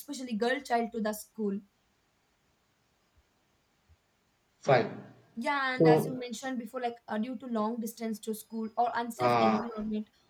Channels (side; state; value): both; identical; correlation 1.00